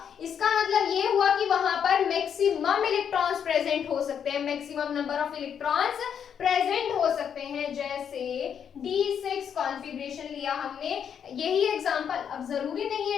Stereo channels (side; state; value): right; quieter; 8.0 dB